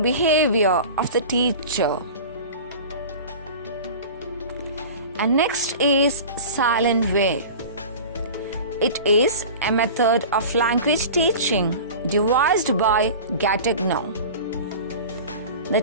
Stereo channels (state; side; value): inverted; both; correlation -0.36